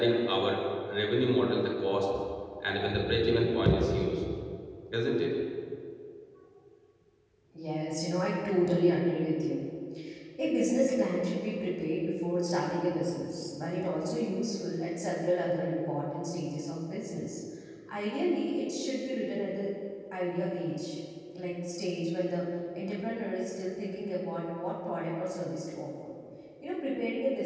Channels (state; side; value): identical; both; correlation 1.00